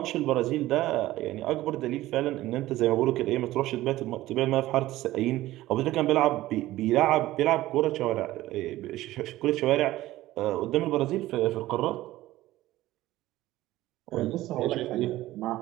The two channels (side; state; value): left; quieter; 16.2 dB